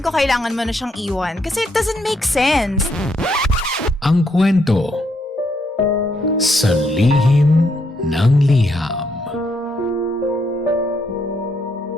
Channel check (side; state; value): both; normal; correlation 0.75